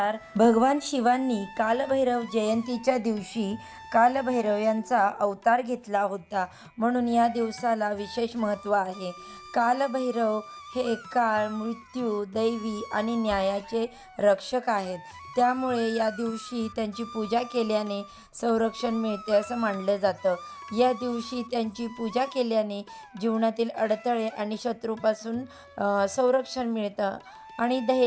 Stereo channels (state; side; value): identical; both; correlation 1.00